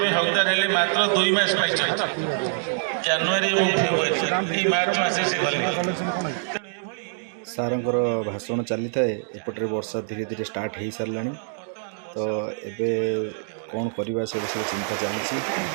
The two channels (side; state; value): left; silent; digital silence